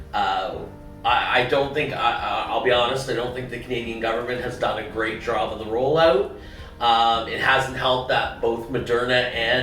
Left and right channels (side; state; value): both; identical; correlation 1.00